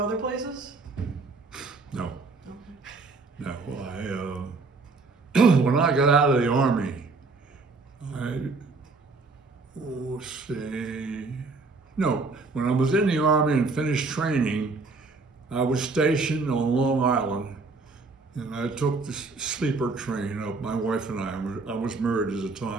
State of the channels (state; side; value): quieter; left; 3.9 dB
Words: other places? No. Okay. No, when I got out of the Army, when I was in the Army and finished training, I was stationed on Long Island, and I took the sleeper train up. My wife and I was married at the